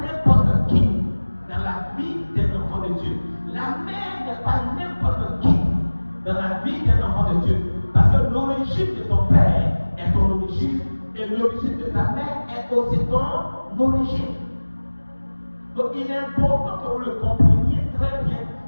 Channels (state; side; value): inverted; both; correlation -1.00